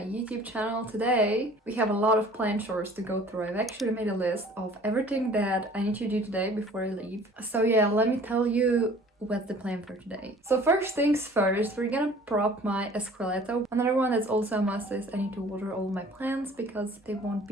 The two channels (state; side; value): normal; both; correlation 0.50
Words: YouTube channel. Today we have a lot of plant chores to go through. I've actually made a list of everything that I need to do today before I leave. So yeah, let me tell you what's the plan for today. So first things first, we're gonna prop my escalatu. Another one that's also a must is I need to water all my plants because they won't